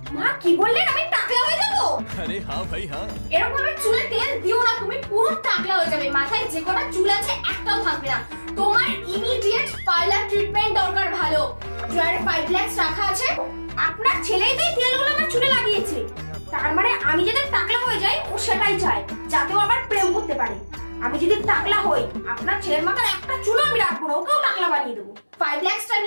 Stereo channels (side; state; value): both; inverted; correlation -1.00